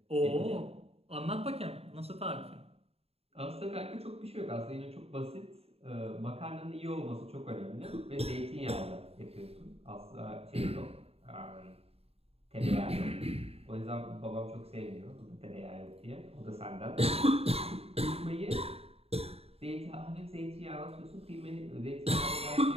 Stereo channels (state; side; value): late; left; 0.29 ms